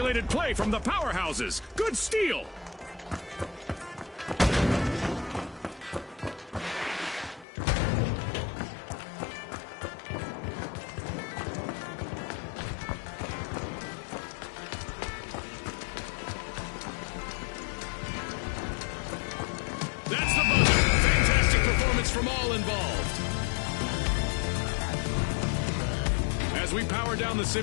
play from the powerhouses. Good steal. That's the buzzer. Fantastic performance from all involved. As we power down the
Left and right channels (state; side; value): drops out; right; at 7.5 s